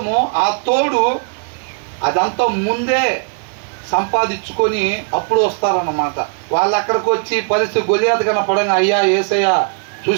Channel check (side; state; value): left; quieter; 39.6 dB